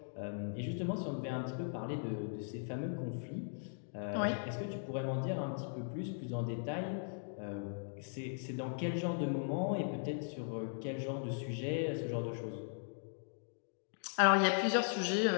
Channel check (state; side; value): silent; right; digital silence